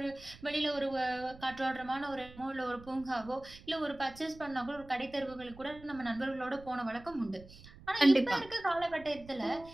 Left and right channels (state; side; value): noise; right; rumble, 19 dB below the sound